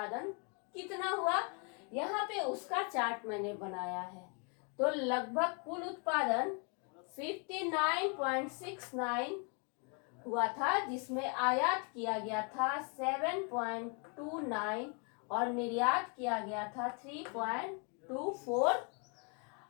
कितना हुआ? यहाँ पे उसका चार्ट मैंने बनाया है। तो लगभग कुल उत्पादन 59.69 हुआ था, जिसमें आयात किया गया था 7.29 और निर्यात किया गया था 3.24।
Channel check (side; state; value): right; quieter; 37.1 dB